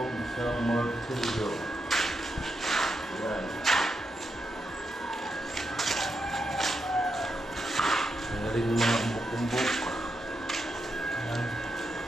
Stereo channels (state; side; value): normal; both; correlation 0.84